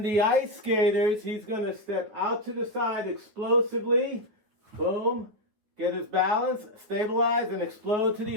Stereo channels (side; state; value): left; late; 9.9 ms